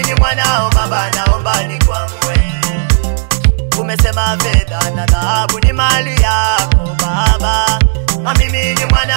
ni mwanao baba, naomba nikwamue. Umesema fedha na dhahabu ni mali yako baba, na mimi ni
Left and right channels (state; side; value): silent; left; digital silence